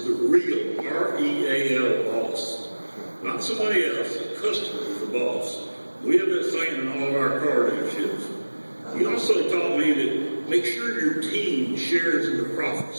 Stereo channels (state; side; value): inverted; both; correlation -1.00